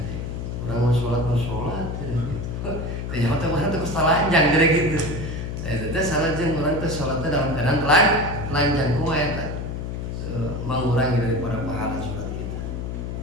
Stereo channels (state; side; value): noise; left; hum, 5 dB below the sound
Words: Orang mau sholat gitu. Ternyata orang terus telanjang jadi gitu. Itu salah jeung orang teh sholatnya dalam keadaan telanjang kumaha eta? Mengurangi daripada pahala sholat kita.